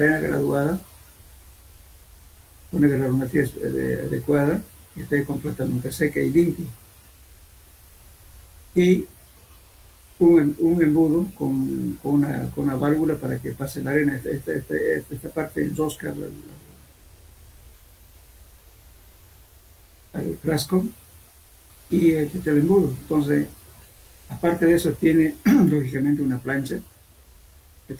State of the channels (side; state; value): both; identical; correlation 1.00